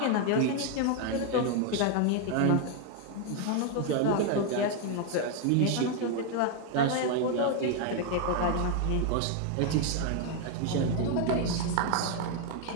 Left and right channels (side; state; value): both; different; correlation 0.01